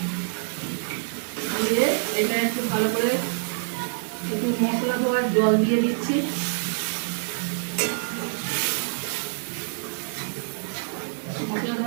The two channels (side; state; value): left; silent; 61 dB below the other